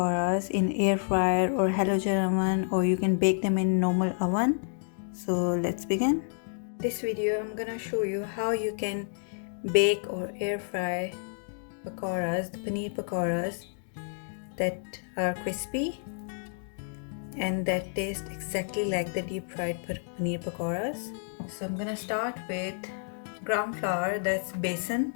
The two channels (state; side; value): silent; right; digital silence